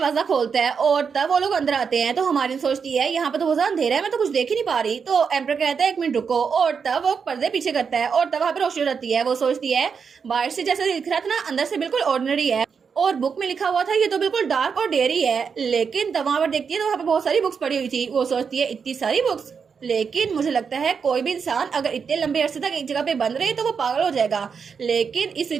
खोलता है और तब वो लोग अंदर आते हैं। तो हमारी सोचती है यहाँ पे तो बहुत ज्यादा अंधेरा है मैं तो कुछ देख ही नहीं पा रही। तो एम्पर कहता है एक मिनट रुको और तब वो पर्दे पीछे करता है और तब वहां पे रोशनी रहती है। वो सोचती है बाहर से जैसे दिख रहा था ना अंदर से बिल्कुल ऑर्डिनरी है और बुक में लिखा हुआ था ये तो बिल्कुल डार्क और डेयरी है। लेकिन तब वहां पर देखती है तो वहां पे बहुत सारी बुक्स पड़ी हुई थी। वो सोचती है इतनी सारी बुक्स लेकिन मुझे लगता है कोई भी इंसान अगर इतने लंबे अरसे तक एक जगह पे बंद रहे तो वो पागल हो जाएगा लेकिन इस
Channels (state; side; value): quieter; left; 6.1 dB